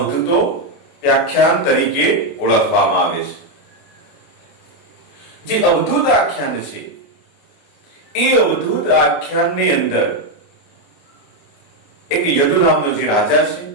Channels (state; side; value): late; right; 29 ms